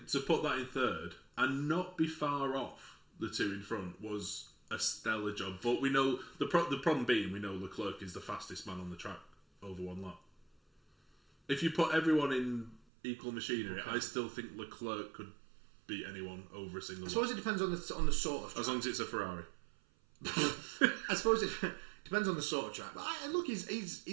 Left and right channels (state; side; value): drops out; left; at 12.8 s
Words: to put that in third and not be far off the two in front was a stellar job. But we know the problem being we know Leclerc is the fastest man on the track over one lap. If you put everyone in equal machinery, I still think Leclerc could beat anyone over a single lap. I suppose it depends on the sort of track. As long as it's a Ferrari. I suppose it depends on the sort of track. But look,